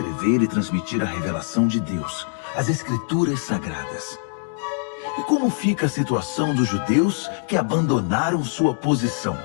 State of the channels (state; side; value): silent; right; digital silence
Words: e transmitir a revelação de Deus, as Escrituras Sagradas. E como fica a situação dos judeus que abandonaram sua posição?